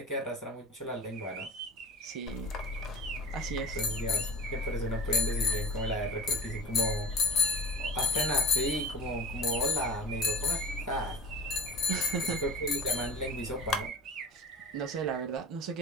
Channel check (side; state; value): both; normal; correlation 0.37